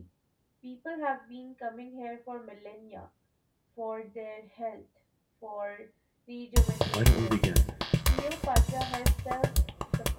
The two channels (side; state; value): both; identical; correlation 1.00